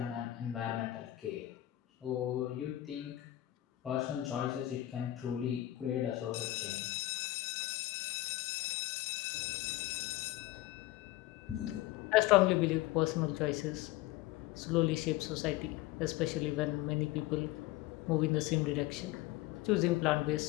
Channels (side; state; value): right; quieter; 15.9 dB